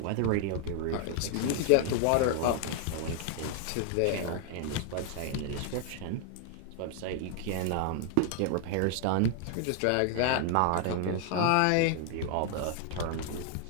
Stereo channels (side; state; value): both; different; correlation 0.00